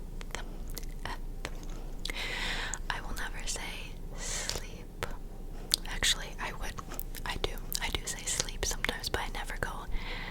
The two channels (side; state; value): both; identical; correlation 1.00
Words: F. I will never say sleep. Actually, I do say sleep sometimes, but I never go